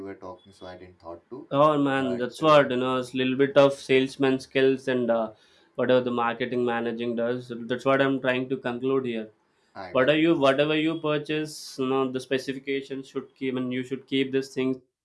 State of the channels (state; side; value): identical; both; correlation 1.00